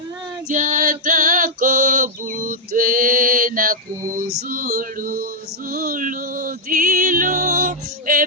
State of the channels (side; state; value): both; normal; correlation -0.05